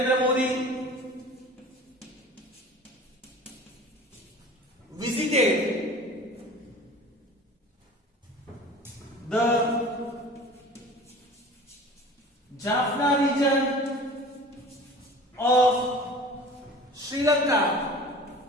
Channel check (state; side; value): normal; both; correlation 0.41